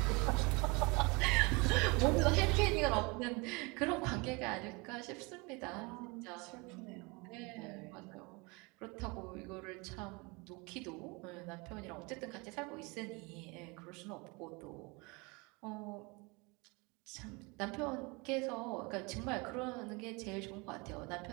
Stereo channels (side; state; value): left; quieter; 27.6 dB